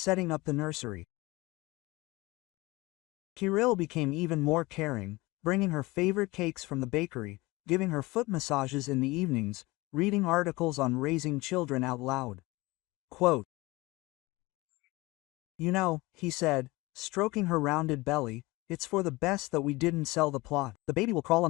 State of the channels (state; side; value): quieter; right; 21.9 dB